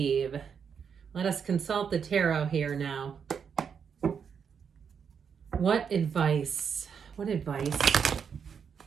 Let us consult the tarot here now. What advice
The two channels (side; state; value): left; quieter; 6.9 dB